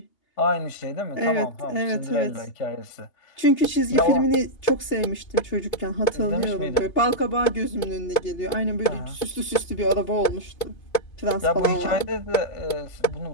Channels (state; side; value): late; right; 2.8 ms